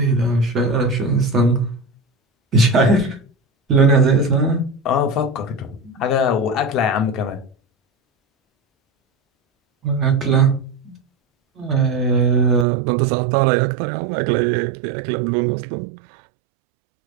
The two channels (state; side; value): drops out; left; at 12.7 s